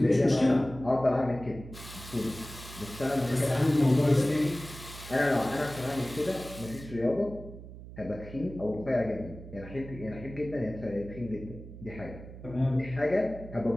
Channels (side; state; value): right; noise; hum, 14 dB below the sound